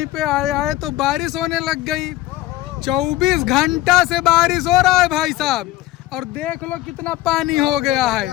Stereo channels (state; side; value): quieter; right; 16.0 dB